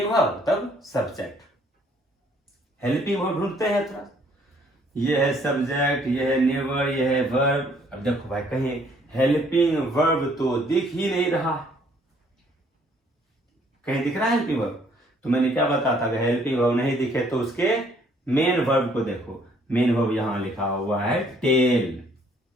वर्ब तब सब्जेक्ट। हेल्पिंग वर्ब ढूंढते हैं थोड़ा, ये है सब्जेक्ट, ये है नेवर, ये है वर्ब। अब देखो भाई कहीं हेल्पिंग वर्ब तो दिख ही नहीं रहा, कहीं दिख रहा है हेल्पिंग वर्ब? तो मैंने क्या बताया था, अगर हेल्पिंग वर्ब नहीं दिखे तो उसके मेन वर्ब को देखो। मेन वर्ब यहां लिखा हुआ है टेल,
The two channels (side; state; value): both; normal; correlation 0.63